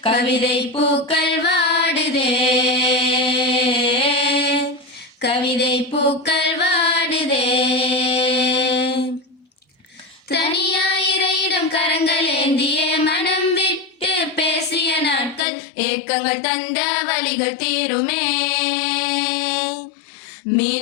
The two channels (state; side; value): drops out; right; at 15.5 s